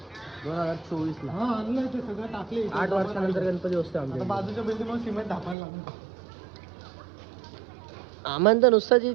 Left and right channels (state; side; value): drops out; left; at 5.6 s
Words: 2024 ला. सगळं टाकले. 8 वर्षानंतर गणपती बसतोय आमच्या. बाजूच्या बिल्डिंग सिमेंट ढापायला लागून. आम्हाला तर नुसतं